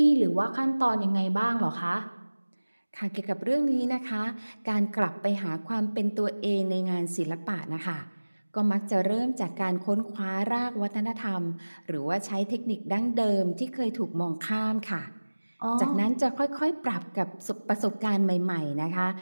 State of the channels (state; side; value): inverted; both; correlation -1.00